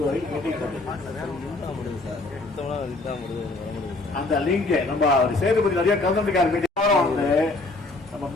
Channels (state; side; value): quieter; right; 3.1 dB